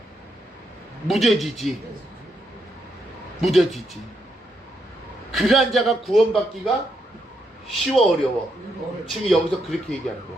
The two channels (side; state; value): both; normal; correlation 0.79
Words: 무뎌지지. 그러한 자가 구원받기가 쉬워 어려워? 지금 여기서 그렇게 얘기하는 거야.